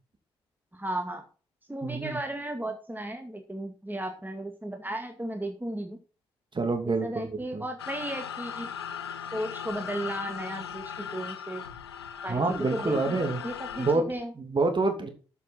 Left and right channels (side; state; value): both; normal; correlation 0.71